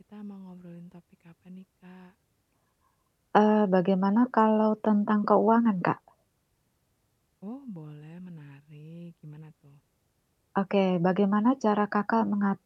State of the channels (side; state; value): both; identical; correlation 1.00